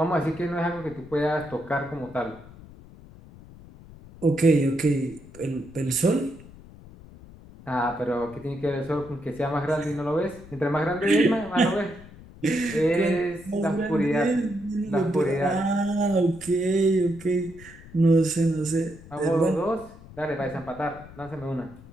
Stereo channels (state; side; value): noise; left; rumble, 19 dB below the sound